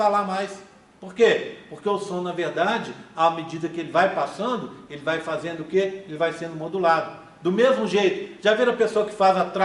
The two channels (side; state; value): both; identical; correlation 1.00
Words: mais. Por quê? Porque o som, na verdade, à medida que ele vai passando, ele vai fazendo o quê? Ele vai sendo modulado. Do mesmo jeito, já viram a pessoa que faz uma